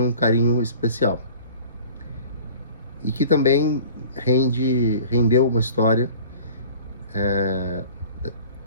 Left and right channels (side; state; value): both; inverted; correlation -0.45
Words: um carinho especial. E que também rendeu uma história, é